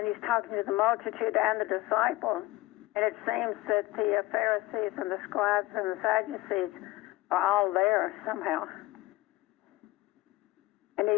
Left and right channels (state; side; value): quieter; right; 18.1 dB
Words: talking to the multitude and the disciples. And it seems that the Pharisees and the scribes and the Sadducees are all there somehow. And